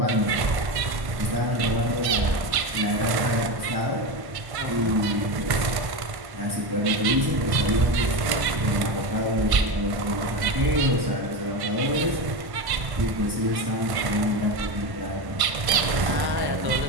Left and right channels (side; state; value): left; late; 1.1 ms